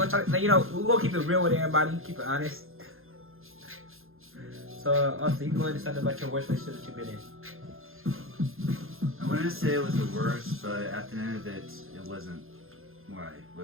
talk. You know, we're gonna keep it real with everybody, keep it honest. So, Austin, you can go ahead and talk about your worst relationship that you've been in. I wouldn't say it was the worst, but at the end of it, it wasn't what I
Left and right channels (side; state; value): left; late; 0.60 ms